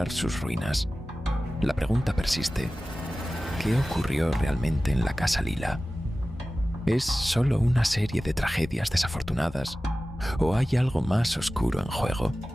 sus ruinas. La pregunta persiste: ¿qué ocurrió realmente en la Casa Lila? ¿Es solo una serie de tragedias desafortunadas o hay algo más oscuro en juego?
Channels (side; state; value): both; normal; correlation 0.96